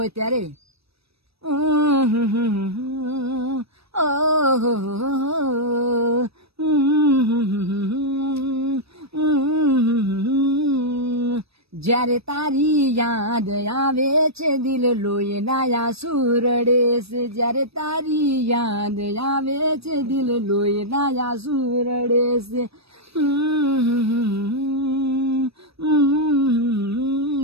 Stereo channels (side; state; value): left; late; 0.78 ms